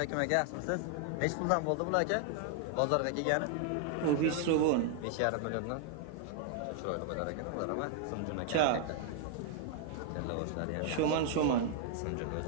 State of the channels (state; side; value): different; both; correlation 0.00